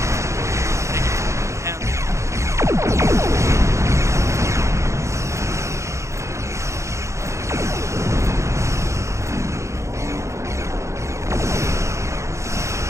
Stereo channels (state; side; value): late; left; 0.14 ms